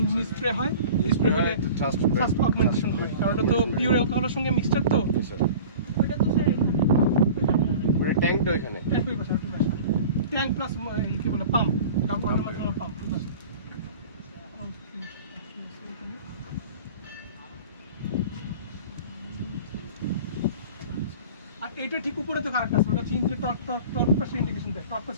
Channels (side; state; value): both; inverted; correlation -0.40